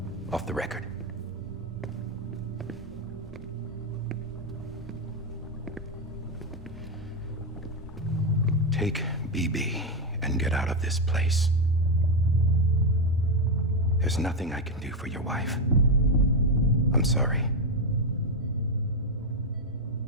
Off the record. Take BB and get out of this place. There's nothing I can do for your wife. I'm sorry.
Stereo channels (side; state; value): both; normal; correlation 0.06